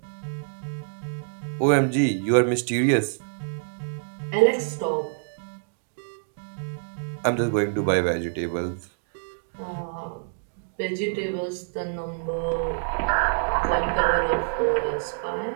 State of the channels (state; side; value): silent; left; digital silence